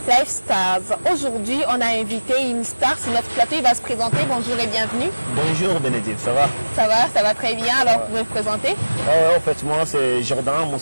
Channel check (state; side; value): inverted; both; correlation -1.00